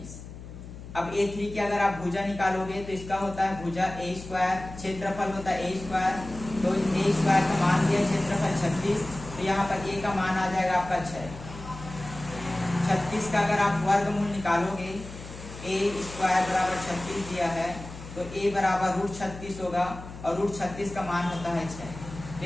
अब A3 की अगर आप भुजा निकालोगे तो इसका होता है भुजा A², क्षेत्रफल होता है A², तो A² का मान दिया क्षेत्रफल 36, तो यहाँ पर A का मान आ जाएगा आपका 6। 36 का अगर आप वर्गमूल निकालोगे, A² बराबर 36 दिया है, तो A बराबर √36 होगा और √36 का मान होता है 6। तो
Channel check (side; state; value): left; noise; hum, 13 dB below the sound